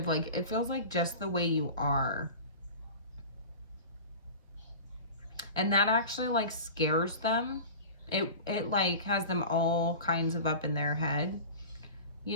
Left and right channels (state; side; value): inverted; both; correlation -0.34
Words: Like it feels like just the way you are. And that actually like scares them. It like has them all kinds of up in their head, you